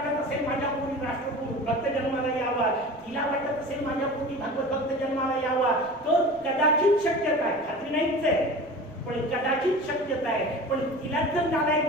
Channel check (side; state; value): right; noise; rumble, 26 dB below the sound